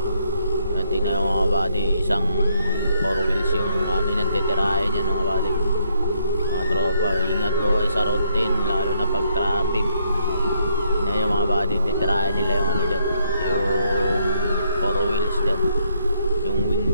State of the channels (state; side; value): inverted; both; correlation -0.72